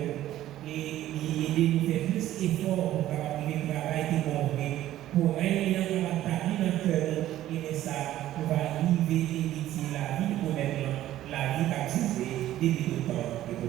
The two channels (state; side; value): quieter; left; 13.6 dB